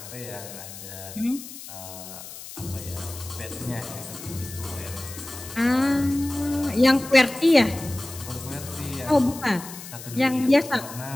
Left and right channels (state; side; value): noise; left; hiss, 13 dB below the sound